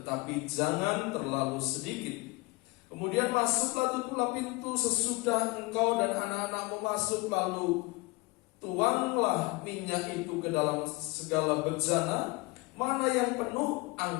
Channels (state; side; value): quieter; right; 24.2 dB